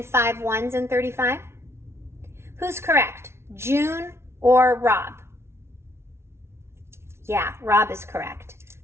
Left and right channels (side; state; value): left; late; 0.12 ms